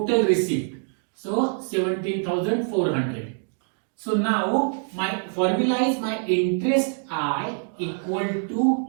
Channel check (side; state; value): left; silent; 61 dB below the other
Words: receipt. So 17,400. So now my formula is my interest I equal to